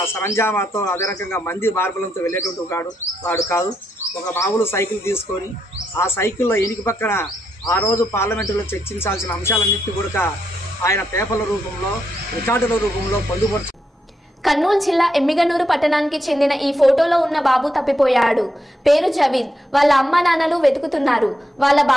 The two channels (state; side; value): normal; both; correlation 0.81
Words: సరంజామాతో, అదే రకంగా మంది మార్బలంతో వెళ్ళేటువంటి వాడు కాదు. ఒక మామూలు సైకిల్ తీసుకొని ఆ సైకిల్లో ఎనికి పక్కన ఆ రోజు పార్లమెంటులో చర్చించాల్సిన అంశాలన్నింటినీ కూడా ఆయన పేపర్ల రూపంలో, రికార్డుల రూపంలో పొందుపరుచు. కర్నూలు జిల్లా ఎమ్మిగనూరు పట్టణానికి చెందిన ఈ ఫోటోలో ఉన్న బాబు తప్పిపోయాడు. పేరు జవీద్. వాళ్ళ అమ్మ నాన్నలు వెతుకుతున్నారు. వాళ్ళ